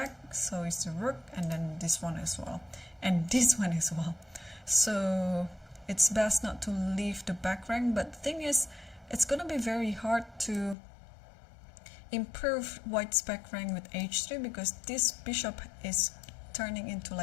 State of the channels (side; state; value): right; drops out; at 10.8 s